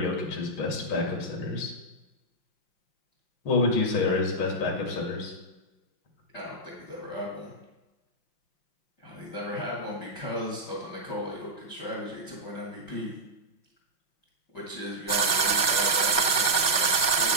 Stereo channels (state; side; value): late; right; 5.4 ms